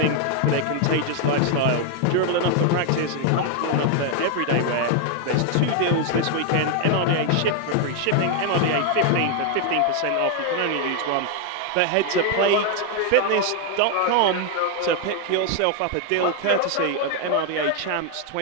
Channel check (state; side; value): different; both; correlation 0.01